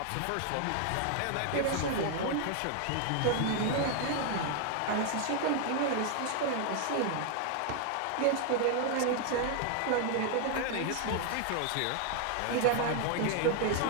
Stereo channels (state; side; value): different; both; correlation 0.00